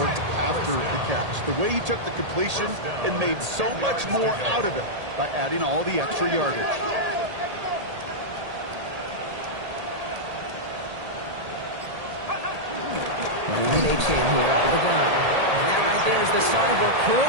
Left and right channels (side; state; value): left; late; 1.8 ms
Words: after the catch. The way he took the completion and made so much more out of it by adding all the extra yardage. Running an H-hand here out of the gun. And that right there is the start of what